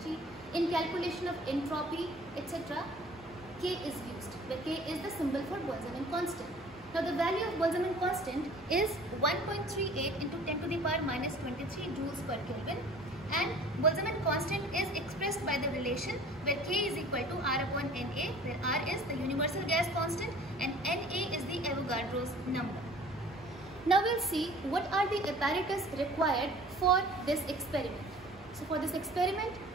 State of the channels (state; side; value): normal; both; correlation 0.48